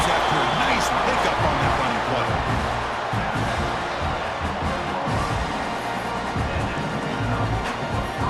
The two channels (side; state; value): both; identical; correlation 1.00